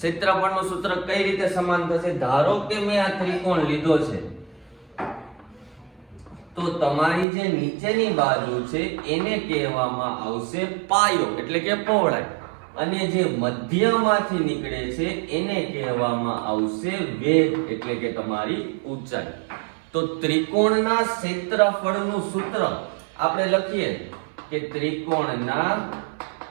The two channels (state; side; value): drops out; left; at 7.2 s